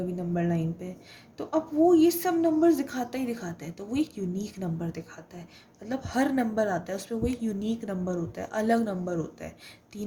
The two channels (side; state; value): both; identical; correlation 1.00